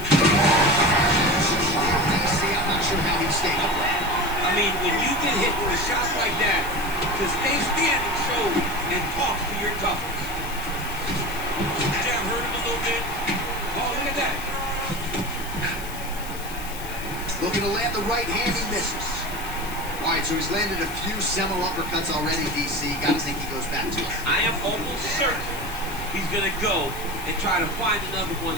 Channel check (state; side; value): noise; left; hiss, 13 dB below the sound